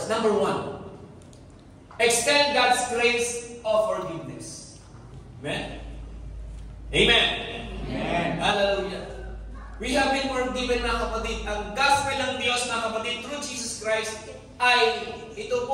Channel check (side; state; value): both; identical; correlation 1.00